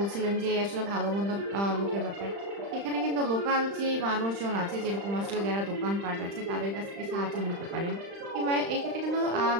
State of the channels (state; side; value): late; left; 35 ms